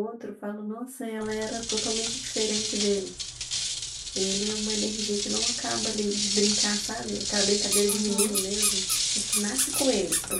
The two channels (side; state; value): both; identical; correlation 1.00